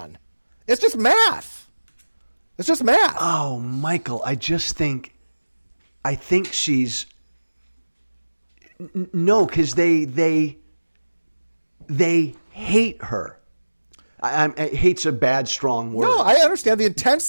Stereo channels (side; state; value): both; inverted; correlation -1.00